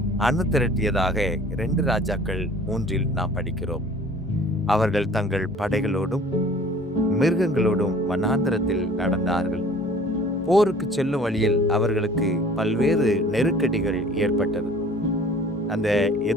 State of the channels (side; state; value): both; normal; correlation 0.49